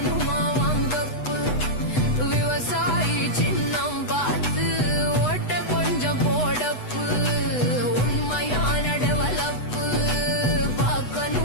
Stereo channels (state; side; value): late; right; 8.0 ms